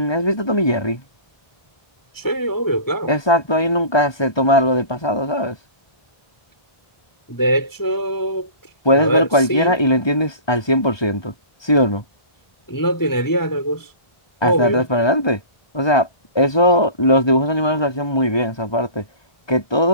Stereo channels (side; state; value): right; late; 1.2 ms